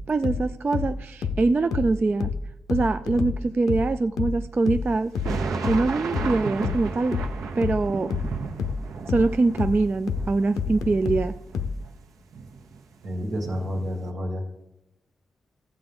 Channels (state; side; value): normal; both; correlation 0.89